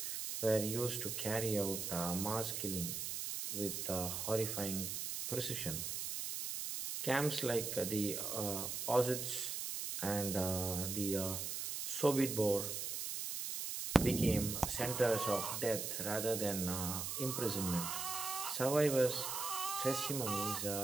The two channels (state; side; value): noise; right; hiss, 3 dB below the sound